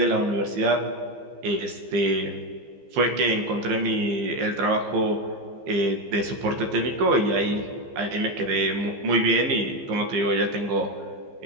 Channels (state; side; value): late; left; 15 ms